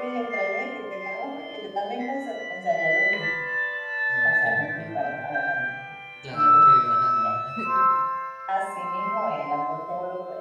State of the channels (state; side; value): identical; both; correlation 1.00